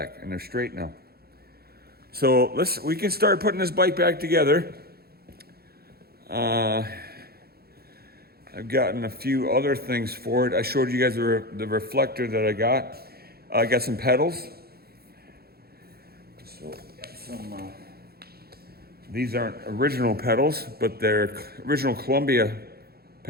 and they're straight now. So we can start putting this bike back together. I've gotten a few other things for it. I showed you guys the reflector that I got. I got some pedals. So these aren't original pedals, but they're original Columbia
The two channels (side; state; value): left; late; 0.45 ms